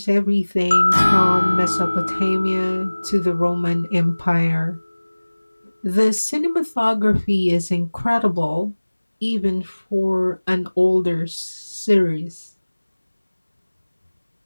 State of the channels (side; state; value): both; inverted; correlation -1.00